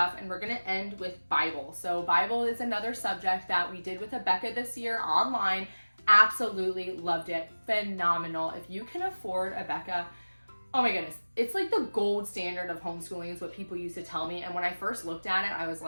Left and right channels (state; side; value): inverted; both; correlation -1.00